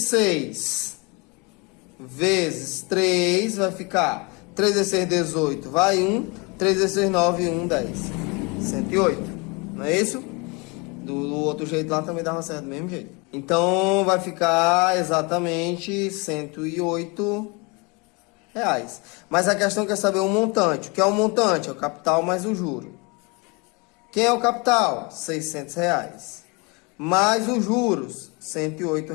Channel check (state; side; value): quieter; right; 29.2 dB